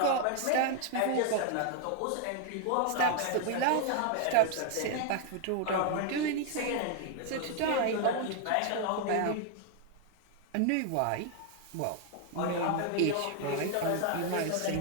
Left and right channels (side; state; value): both; different; correlation 0.00